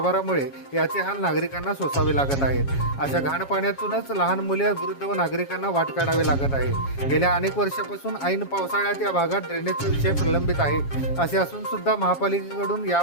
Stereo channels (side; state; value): right; late; 7.3 ms